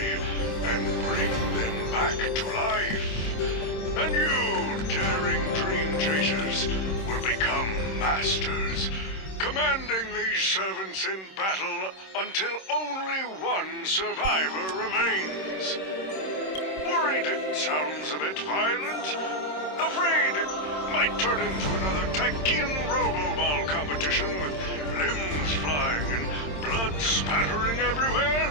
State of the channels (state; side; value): late; right; 26 ms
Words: and bring them back to life. And you, daring dream chasers, will become masters, commanding these servants in battle until only one survivor remains. Worried it sounds a bit violent? Afraid it might turn into another Tykean Robo-Ball competition with limbs flying and blood spattering